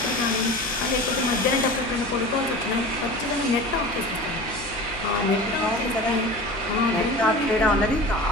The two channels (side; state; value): left; noise; hum, 15 dB below the sound